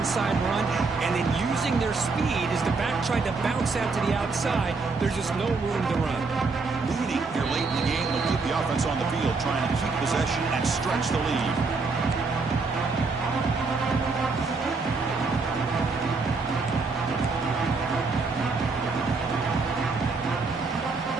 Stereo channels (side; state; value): left; quieter; 4.2 dB